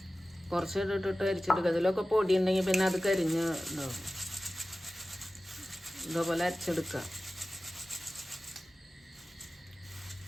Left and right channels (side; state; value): both; normal; correlation 0.96